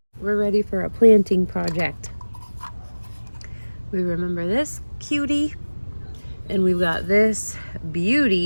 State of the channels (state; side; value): inverted; both; correlation -1.00